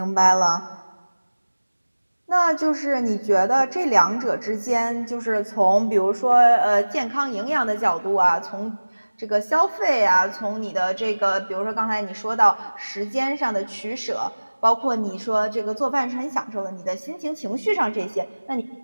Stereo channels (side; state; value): both; inverted; correlation -1.00